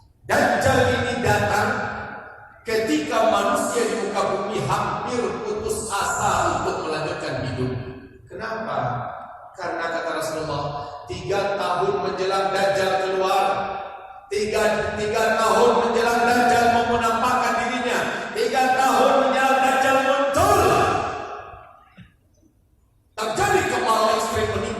Dajjal ini datang ketika manusia di muka bumi hampir putus asa untuk melanjutkan hidup. Kenapa? Karena kata Rasulullah, 3 tahun menjelang Dajjal keluar, 3 tahun menjelang Dajjal menampakkan dirinya, 3 tahun menjelang Dajjal muncul, terjadi kemarau ekstrim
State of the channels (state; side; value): identical; both; correlation 1.00